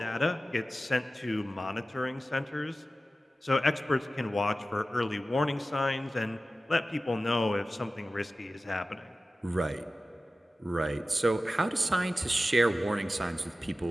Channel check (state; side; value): normal; both; correlation 0.95